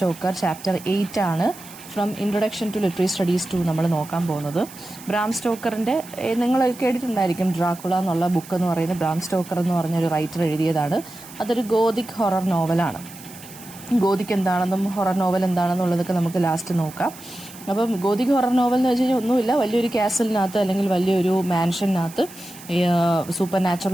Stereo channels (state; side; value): noise; right; hiss, 18 dB below the sound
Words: chapter 8 ആണ് from introduction to literary studies 2 നമ്മൾ നോക്കാൻ പോകുന്നത്. ബ്രാം സ്റ്റോക്കറിൻ്റെ നിങ്ങൾ കേട്ടിട്ടുണ്ടായിരിക്കും ഡ്രാക്കുള എന്നുള്ള ബുക്ക് എന്ന് പറയുന്നത് ബ്രാം സ്റ്റോക്കർ എന്ന് പറഞ്ഞൊരു റൈറ്റർ എഴുതിയതാണ്. അതൊരു ഗോതിക് ഹൊറർ നോവലാണ്. ഗോതിക് എന്താണെന്നും ഹൊറർ നോവൽ എന്താണെന്നുള്ളതൊക്കെ നമുക്ക് ലാസ്റ്റ് നോക്കാം. അപ്പം ഗോതിക് ഹൊറർ നോവൽ എന്ന് വെച്ച് കഴിഞ്ഞാൽ ഒന്നുമില്ല, വലിയൊരു കാസലിനകത്ത് അല്ലെങ്കിൽ വലിയൊരു മാൻഷനകത്ത് സൂപ്പർ